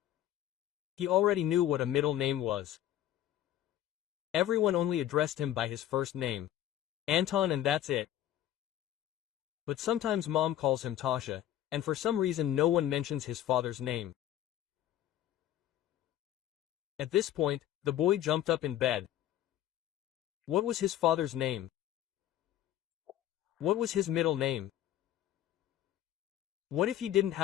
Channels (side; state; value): right; quieter; 12.3 dB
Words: He already knew what a middle name was. Everyone only addressed him by his first name. Anton, and that's it. But sometimes Mom calls him Tasha, and for some reason no one mentions his father's name. At this point, the boy jumped up in bed. What was his father's name? What was his middle name? What if he didn't